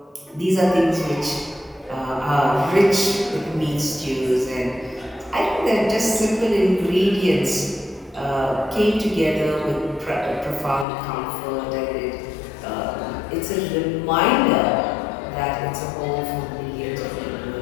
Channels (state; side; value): drops out; right; at 10.9 s